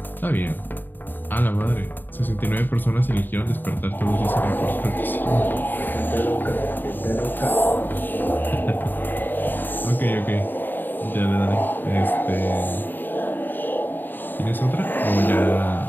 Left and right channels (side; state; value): right; late; 0.092 ms